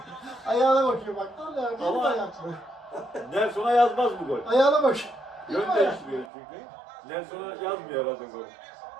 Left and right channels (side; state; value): left; drops out; at 6.3 s